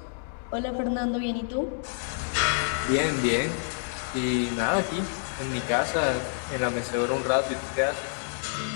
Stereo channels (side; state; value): right; silent; digital silence